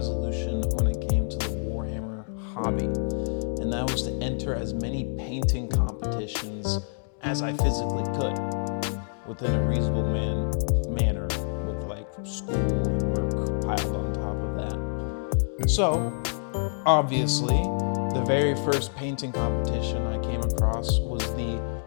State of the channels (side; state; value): right; silent; digital silence